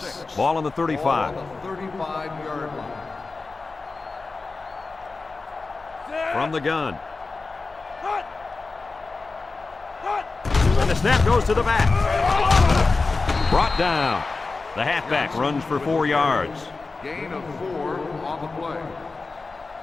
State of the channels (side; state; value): right; quieter; 3.9 dB